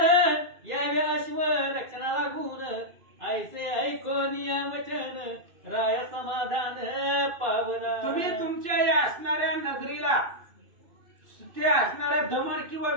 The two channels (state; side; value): late; left; 2.6 ms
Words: यावे अश्व रक्षणा लागून ऐसे ऐकून या वचन राय समाधान पावला. तुम्ही तुमच्या या असणाऱ्या नगरीला ते असणाऱ्या दमन किंवा